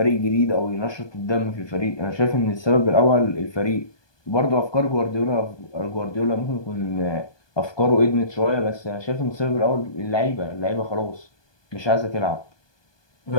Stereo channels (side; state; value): right; late; 1.2 ms